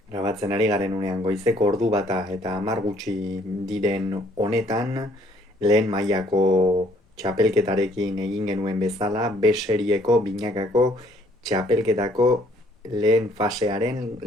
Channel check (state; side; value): normal; both; correlation 0.63